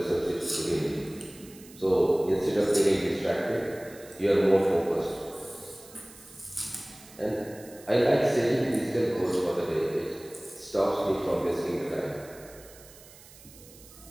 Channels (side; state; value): right; noise; hiss, 21 dB below the sound